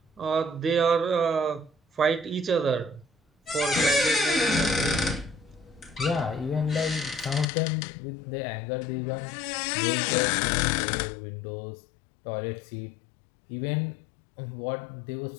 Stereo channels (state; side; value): drops out; right; at 7.5 s